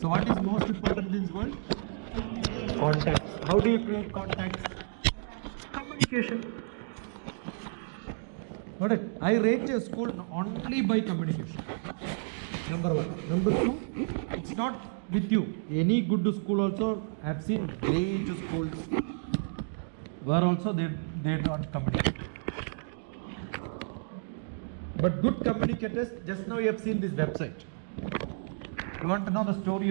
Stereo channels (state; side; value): silent; left; digital silence